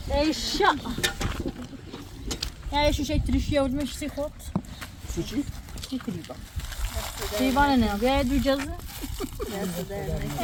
اشا Yani şu şey trişiye vurmuş sikot. Suçi? Divan ne? Bir duyacağız.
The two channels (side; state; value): both; identical; correlation 1.00